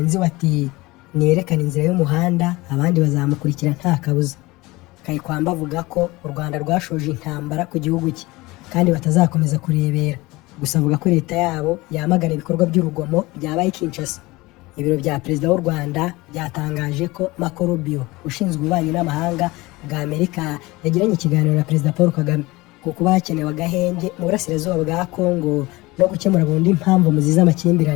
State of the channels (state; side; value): quieter; right; 21.5 dB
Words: we ati niyerekana inzira y'umuhanda abandi bazamukurikira nta kabuza. Kayikwamba avuga ko u Rwanda rwashoje intambara ku gihugu cye kandi batazakomeza kurebera, gusa avuga ko leta yabo yamagana ibikorwa by'urugomo byabaye Kinshasa. Ibiro bya Perezida w'u Rwanda byatangaje ko Marco Rubio ushinzwe ububanyi n'amahanga bwa Amerika yagiranye ikiganiro na Perezida Paul Kagame ku kuba hakenewe agahenge mu burasirazuba bwa Kongo no gukemura burundu impamvu muziza